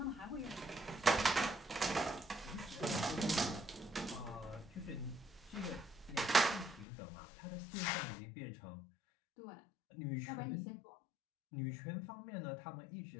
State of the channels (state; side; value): drops out; right; at 6.9 s